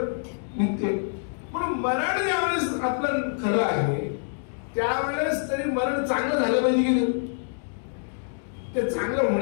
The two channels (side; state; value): right; silent; digital silence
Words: नित्य. पण मरण ज्यावेळेस आपलं खरं आहे त्यावेळेस तरी मरण चांगलं झालं पाहिजे की नाही? ते चांगलं